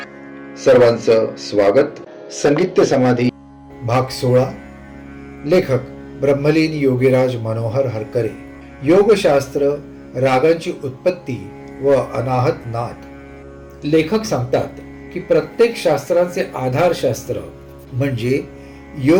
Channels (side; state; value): both; identical; correlation 1.00